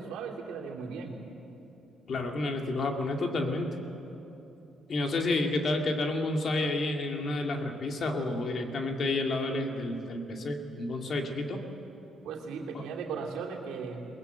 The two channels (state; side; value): normal; both; correlation 0.74